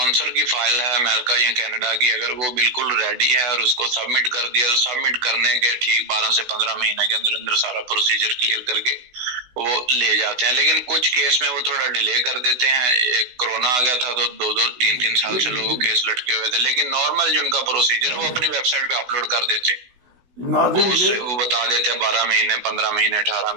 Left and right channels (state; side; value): late; left; 16 ms